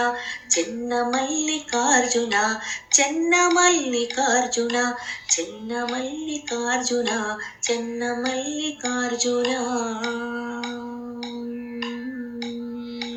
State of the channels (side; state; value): both; identical; correlation 1.00